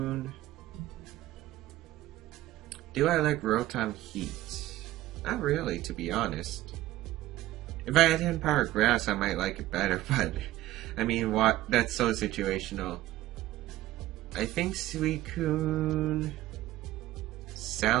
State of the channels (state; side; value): quieter; left; 15.5 dB